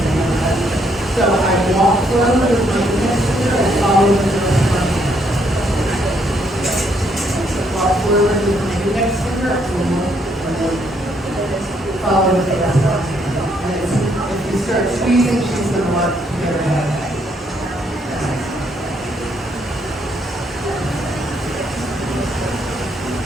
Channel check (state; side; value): normal; both; correlation 0.72